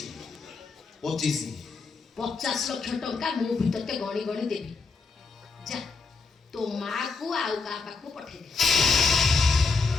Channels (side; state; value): right; quieter; 4.3 dB